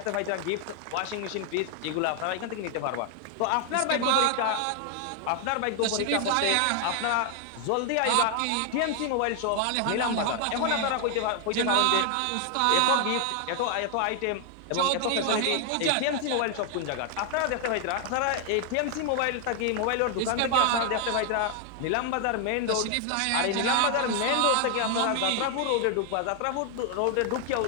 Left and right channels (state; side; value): different; both; correlation 0.00